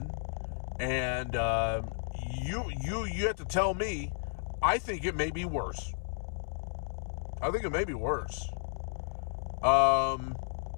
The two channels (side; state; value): right; silent; 56 dB below the other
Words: and you have to tell me, I think it may be worse.